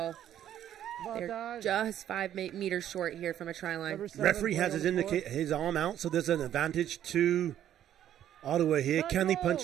They're just 5 meters short here from a try line. Referee has his arm out, so there's an advantage to Ottawa here. Can they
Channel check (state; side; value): quieter; left; 11.0 dB